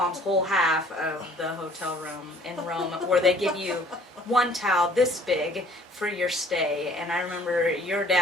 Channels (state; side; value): normal; both; correlation 0.55